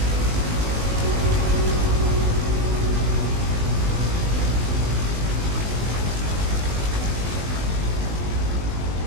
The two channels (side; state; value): left; late; 20 ms